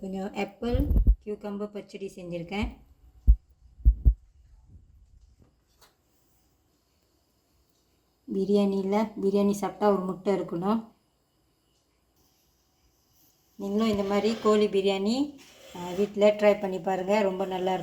கொஞ்சம் ஆப்பிள் கியூக்கம்பர் பச்சடி செஞ்சுருக்கேன். பிரியாணி சாப்பிட்டா ஒரு முட்டை இருக்கணும். நீங்களும் இந்த மாதிரி கோழி பிரியாணி வீட்டில் ட்ரை பண்ணி பாருங்கள், ரொம்ப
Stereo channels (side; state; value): both; identical; correlation 1.00